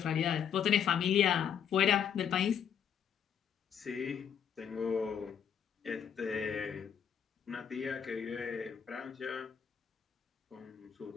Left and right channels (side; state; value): right; quieter; 8.2 dB